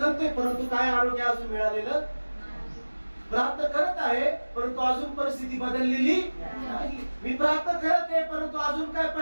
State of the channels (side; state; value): both; inverted; correlation -1.00